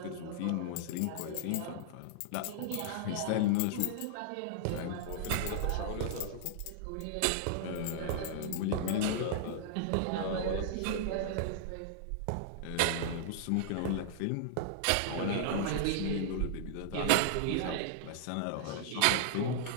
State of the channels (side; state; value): both; different; correlation -0.01